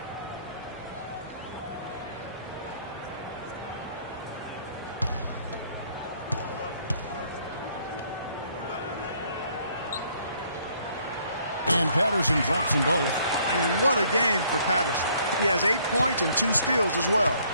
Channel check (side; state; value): both; inverted; correlation -0.64